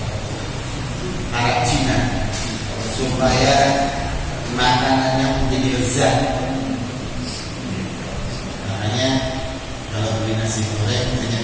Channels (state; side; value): identical; both; correlation 1.00